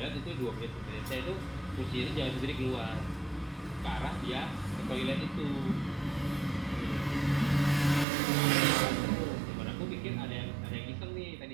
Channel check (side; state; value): left; drops out; at 8.1 s